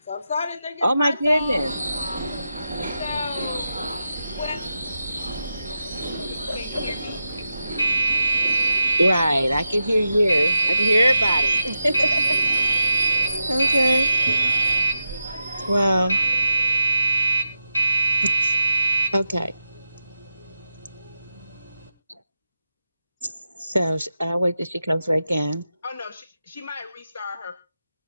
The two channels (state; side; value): inverted; both; correlation -0.89